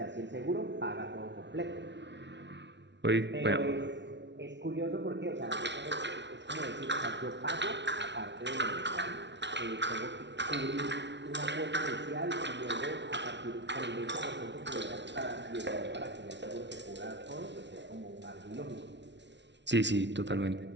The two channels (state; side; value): late; left; 0.51 ms